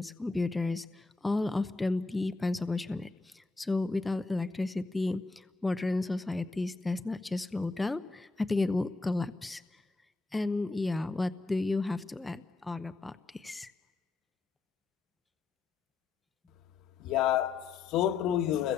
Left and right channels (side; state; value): right; quieter; 3.9 dB